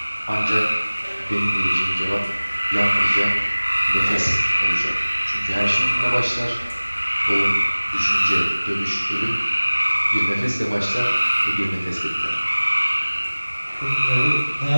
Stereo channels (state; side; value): inverted; both; correlation -1.00